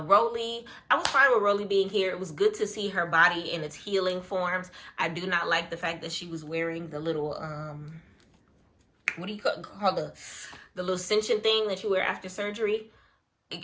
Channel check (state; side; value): identical; both; correlation 1.00